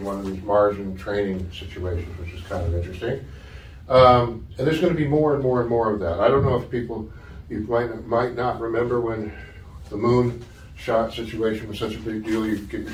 one of these margin training situations, which is kind of interesting. And there's going to be more and more and more of that. I don't know if people, you might not remember when the moon shot situation was such a big deal. You get your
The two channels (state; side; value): identical; both; correlation 1.00